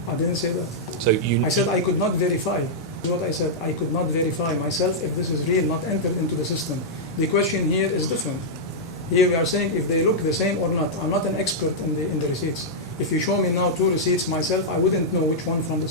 I didn't say that. So you. I said I could not verify. This is what I said. I could not verify myself if this is real, not entered into the system. The question here is different. Here we are saying if they look the same or not. I'm not an expert in the receipts. If you show me now 2 receipts myself, I wouldn't know which one from the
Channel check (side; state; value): both; normal; correlation -0.08